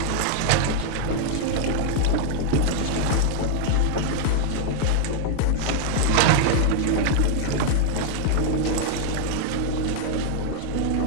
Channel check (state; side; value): different; both; correlation 0.00